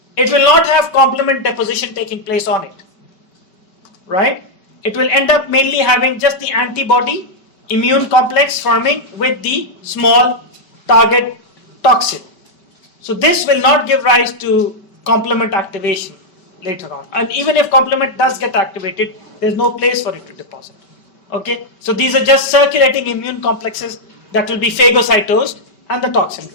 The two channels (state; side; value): late; right; 5.2 ms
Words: it will not have complement deposition taking place on it, right? It will end up mainly having just the antibody immune complex forming with the small target toxin. So this will not give rise to complement activation later on. And even if complement does get activated, there's no place for it to deposit. Okay? So these are just circulating immune complexes that will be phagocytosed and the toxin